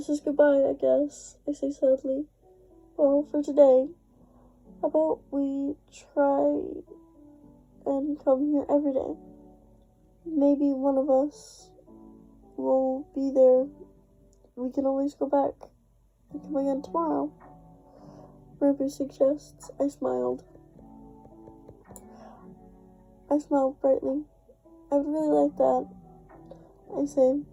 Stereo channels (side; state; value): both; identical; correlation 1.00